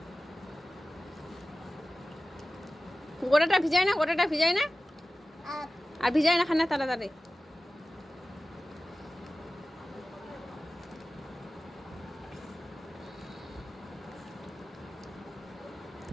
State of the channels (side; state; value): both; normal; correlation 0.96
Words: গোটাটা ভিজায় না আর ভিজায় না খানা তাড়াতাড়ি